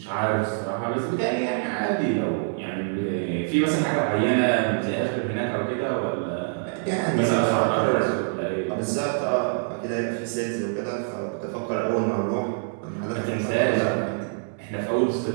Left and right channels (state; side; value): silent; left; digital silence